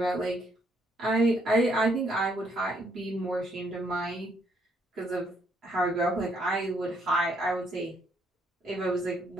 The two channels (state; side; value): normal; both; correlation 0.71